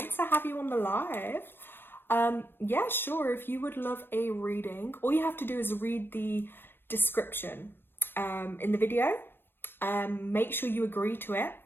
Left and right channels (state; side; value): late; right; 0.099 ms